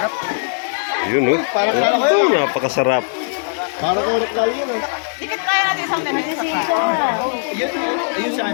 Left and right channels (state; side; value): silent; right; digital silence